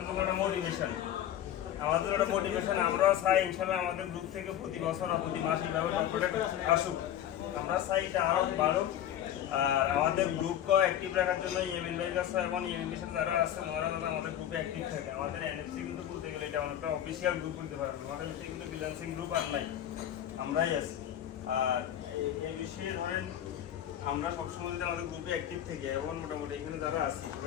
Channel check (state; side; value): quieter; right; 11.1 dB